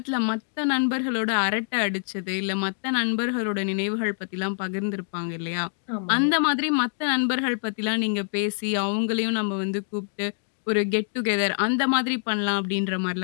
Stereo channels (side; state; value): right; silent; digital silence